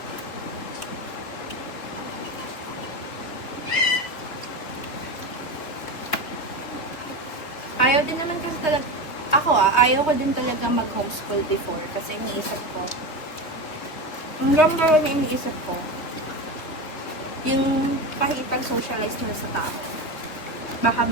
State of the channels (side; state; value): right; late; 3.6 ms